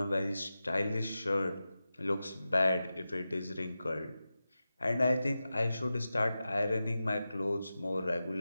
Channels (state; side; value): inverted; both; correlation -0.93